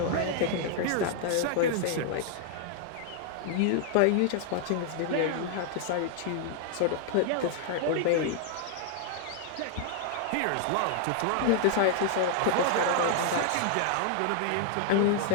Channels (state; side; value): different; both; correlation -0.01